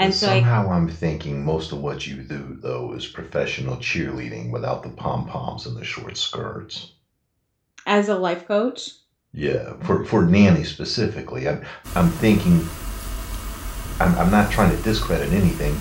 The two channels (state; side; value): identical; both; correlation 1.00